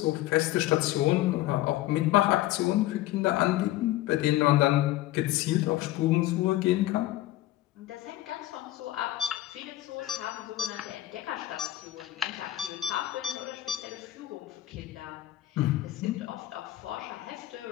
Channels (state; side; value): quieter; right; 15.2 dB